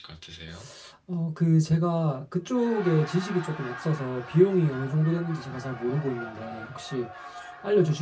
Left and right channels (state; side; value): identical; both; correlation 1.00